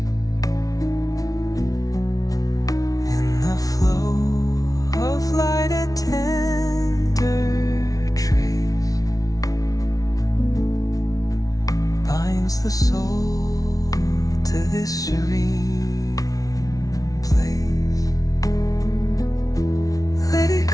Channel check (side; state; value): right; late; 0.18 ms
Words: in the flow of light, a tender trace binds the soul to this serene place. Let it